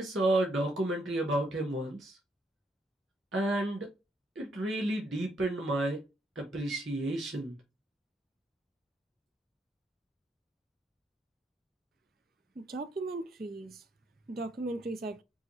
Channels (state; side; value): normal; both; correlation 0.75